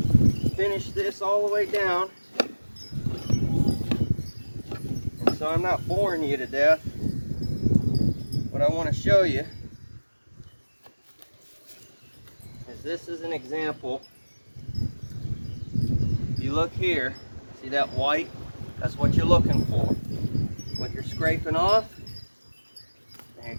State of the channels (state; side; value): inverted; both; correlation -1.00